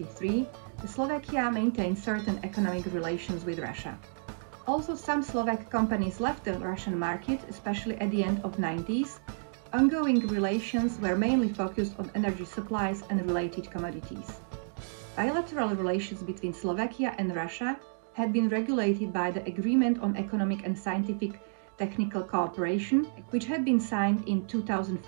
Slovakia maintained certain economic relations with Russia. Also, some Slovak companies left the Russian market, especially at the end of the 90s. Ongoing relations were mainly focused on energy supplies and related commodities. Bilateral relations between Slovakia and Russia had been regulated by the Agreement on Economic and Scientific Technical Cooperation, which had been signed in 2005,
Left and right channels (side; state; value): left; silent; digital silence